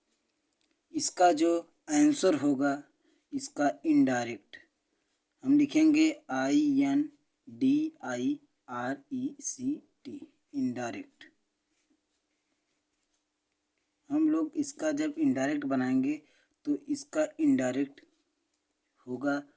इसका जो आंसर होगा इसका इनडायरेक्ट हम लिखेंगे INDIRECT इनडायरेक्ट। हम लोग इसका जब इनडायरेक्ट बनाएंगे तो इसका इनडायरेक्ट होगा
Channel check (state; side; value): identical; both; correlation 1.00